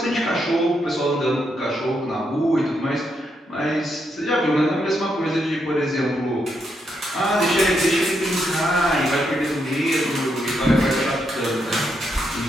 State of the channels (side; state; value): both; normal; correlation 0.80